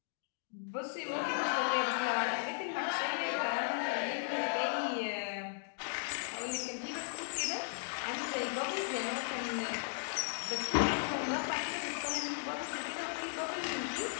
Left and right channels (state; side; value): silent; right; digital silence